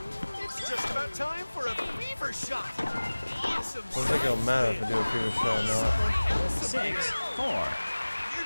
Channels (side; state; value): both; inverted; correlation -1.00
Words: It's just about time for a fever shot. Awesome. I don't think it'll matter if I do a fever shot or not. 6 4.